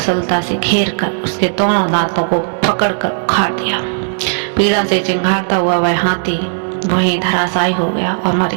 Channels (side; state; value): left; silent; digital silence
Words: से घेर कर उसके दोनों दांतों को पकड़कर उखाड़ दिया। पीड़ा से चिंघाड़ता हुआ वह हाथी वहीं धराशायी हो गया और मर